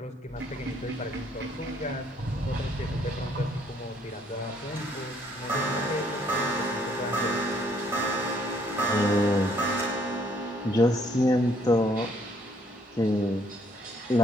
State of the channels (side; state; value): both; normal; correlation 0.65